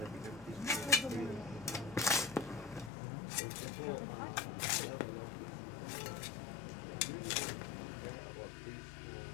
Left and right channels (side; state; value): right; drops out; at 2.9 s